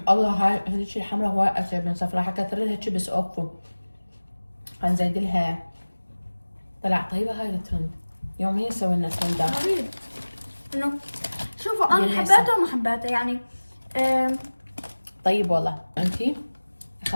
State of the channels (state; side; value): inverted; both; correlation -1.00